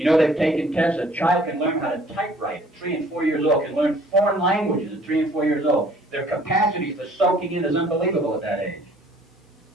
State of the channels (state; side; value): normal; both; correlation 0.56